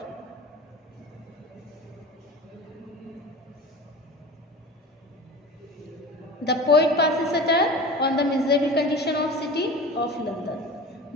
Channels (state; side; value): normal; both; correlation 0.35